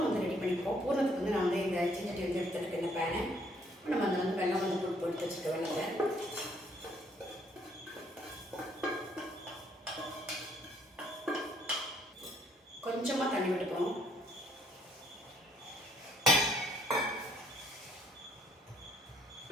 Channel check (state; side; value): normal; both; correlation 0.66